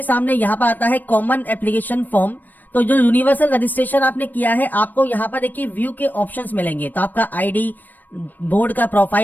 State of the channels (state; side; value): late; right; 0.088 ms